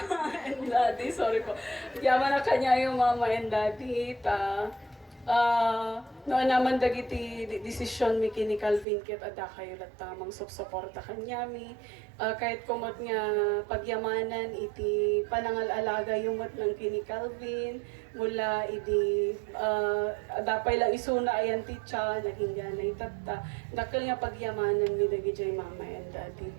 and daddy, sorry po. Agyaman na kanya yung mama and daddy, noon naman dagiti desisyon mi kini Calvin ket ada kayo lat tamang suporta kanya mi. Kahit kumot nga pagyamanan iti panangal-alaga yumat ng kini Calvin mula iti dapay lang isuna ayan titsa naging ganay tatta dakkel nga pagyamanan mi dagiti mama and daddy.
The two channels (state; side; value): drops out; left; at 8.8 s